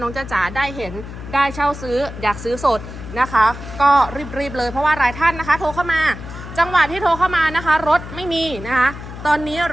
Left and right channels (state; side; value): noise; left; hum, 12 dB below the sound